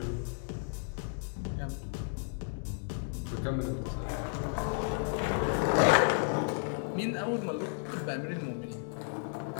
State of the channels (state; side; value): silent; right; 56 dB below the other